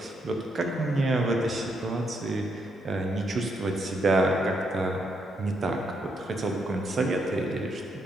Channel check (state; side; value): normal; both; correlation 0.78